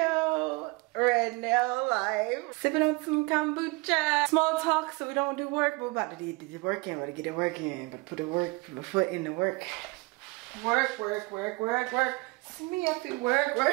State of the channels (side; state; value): left; quieter; 26.0 dB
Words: right now, live, sipping on some kombucha. Small talk so we don't do work, but we're about to do the work in, we're about to get it working, but put the foot in the work. Work. Me have to work.